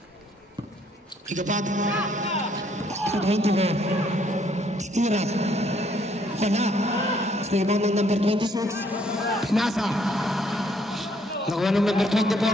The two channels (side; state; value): both; normal; correlation 0.66